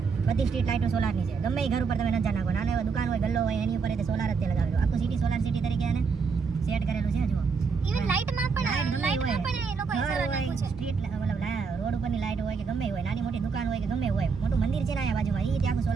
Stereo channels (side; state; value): left; quieter; 5.3 dB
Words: બધી સ્ટ્રીટ લાઇટો સોલારની છે. ગમે એ ઘર ઉપર તમે નજર નાખો, નાના એવા દુકાન હોય, ગલ્લો હોય, એની ઉપર સોલાર જ તે લગાવેલું. આખું સિટી સોલાર સિટી તરીકે એને સેટ કરેલું છે. જુઓ, ઇવન લાઇટમાં પણ એ લોકોએ સોલાર નાખ્યું છે. સ્ટ્રીટ મતલબ રોડ ઉપરની લાઇટ હોય કે ગમે હોય, નાની મોટી દુકાન હોય કે ગમે હોય, મોટું મંદિર છે ને અહીંયા બાજુમાં, એ ત્યાં આખું